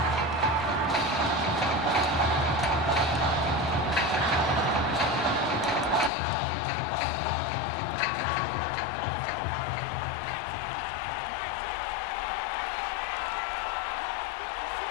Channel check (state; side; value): drops out; right; at 6.1 s